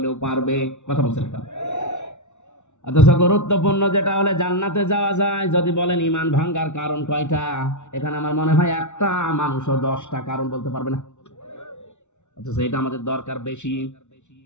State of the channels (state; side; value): late; right; 0.83 ms